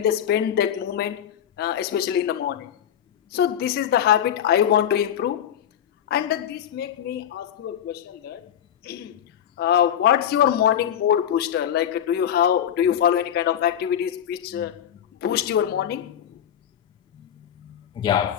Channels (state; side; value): quieter; right; 9.7 dB